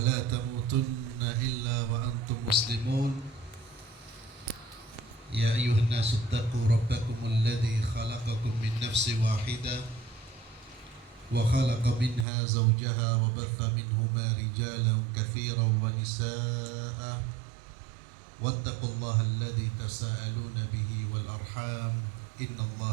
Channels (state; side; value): drops out; left; at 12.2 s